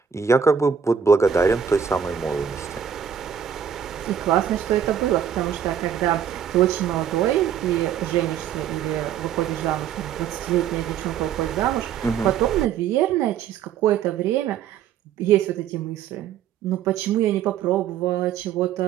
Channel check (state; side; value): quieter; left; 8.3 dB